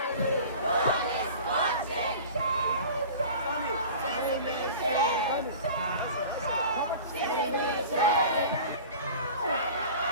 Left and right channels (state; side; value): inverted; both; correlation -0.39